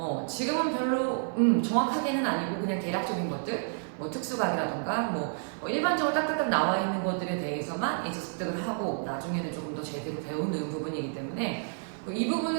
지금은 별로 정확하게는 아니고 그냥 대략적인 것들, 뭐 특수각이라던가 뭐 일반적으로 딱딱딱 나와 있는 것들에 대해서만 이제 습득을 하고 나중에는 조금 더 제대로 배우는 부분이기 때문에 이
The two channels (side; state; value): left; silent; 58 dB below the other